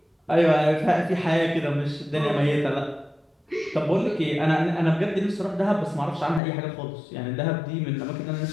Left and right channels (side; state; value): right; drops out; at 6.4 s